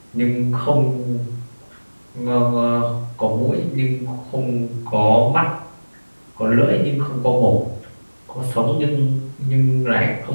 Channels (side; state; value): both; inverted; correlation -1.00